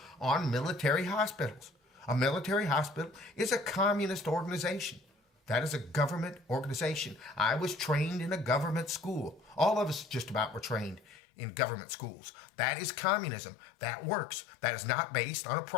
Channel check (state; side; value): drops out; right; at 11.1 s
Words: on military hospitals. A military hospital is a communist organization. That is a government organization. I was trained in a government school. All of us just about were trained in government schools. That is communism. That works. That is not based on a